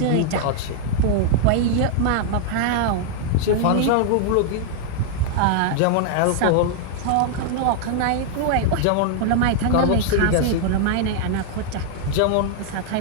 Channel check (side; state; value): both; different; correlation 0.00